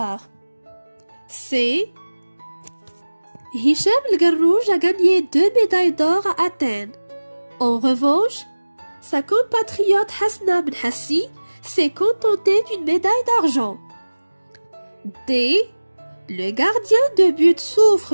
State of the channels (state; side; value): inverted; both; correlation -1.00